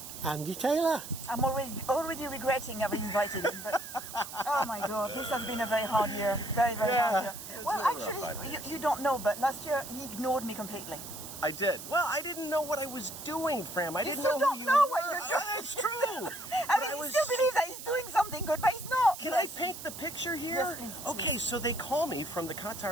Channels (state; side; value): noise; right; hiss, 11 dB below the sound